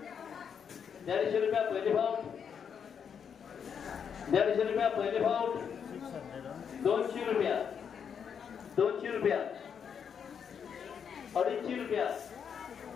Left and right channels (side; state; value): right; quieter; 7.3 dB